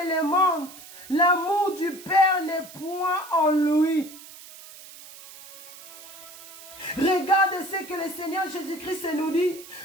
les mondes, l'amour du Père n'est point en lui. Regarde ce que le Seigneur Jésus-Christ nous dit.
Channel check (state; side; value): noise; right; hiss, 17 dB below the sound